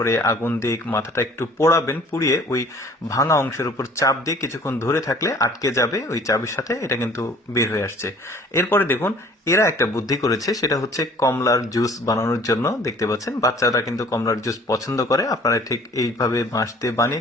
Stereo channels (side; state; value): both; normal; correlation 0.52